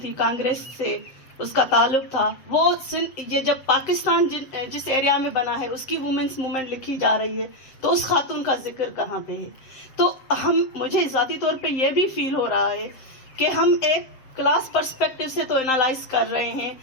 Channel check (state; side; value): late; right; 7.7 ms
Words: تھی، کانگریس سے اس کا تعلق تھا. وہ یہ جب پاکستان جس ایریا میں بنا ہے اس کی وومنس موومنٹ لکھی جا رہی ہے تو اس خاتون کا ذکر کہاں پہ ہے؟ تو مجھے ذاتی طور پہ یہ بھی فیل ہو رہا ہے کہ ہم ایک کلاس پرسپیکٹو سے تو انالائز کر رہے ہیں